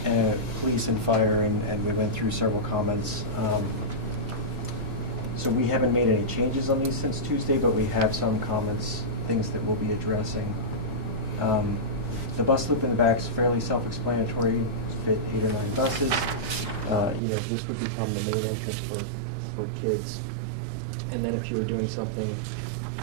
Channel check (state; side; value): drops out; left; at 17.2 s